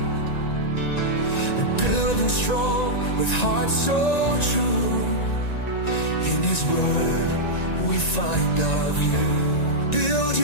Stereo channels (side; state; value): right; late; 1.9 ms